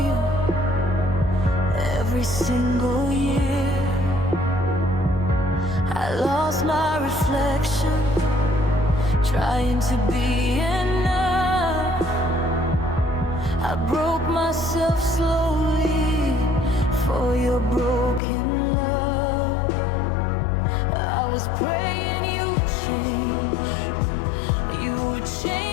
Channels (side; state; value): right; drops out; at 18.2 s